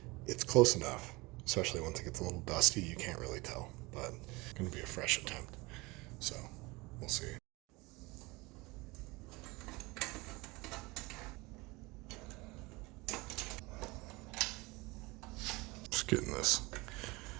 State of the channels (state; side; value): quieter; left; 23.8 dB